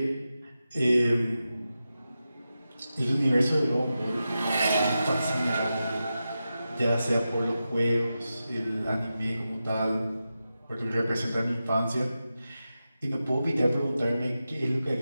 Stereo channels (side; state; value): both; inverted; correlation -0.91